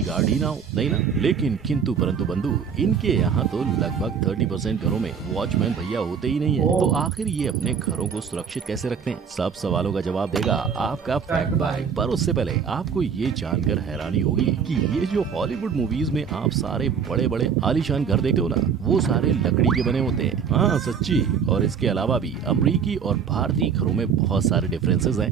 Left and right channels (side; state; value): left; quieter; 6.8 dB